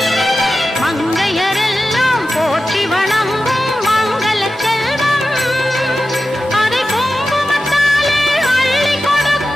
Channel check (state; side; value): normal; both; correlation 0.93